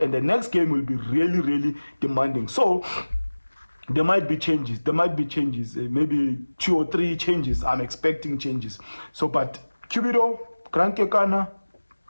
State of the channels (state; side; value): inverted; both; correlation -1.00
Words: And the next game will be really, really demanding. So there might be changes. Maybe 2 or 3 changes. I'm expecting changes. So, but Cubido, Grand Kekana,